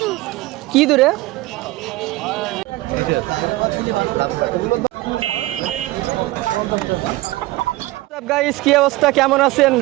কি দূরে? গাইস, কি অবস্থা, কেমন আছেন?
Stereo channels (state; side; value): quieter; left; 18.8 dB